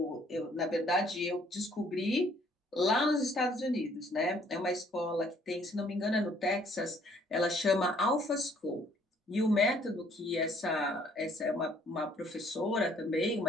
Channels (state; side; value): normal; both; correlation 0.62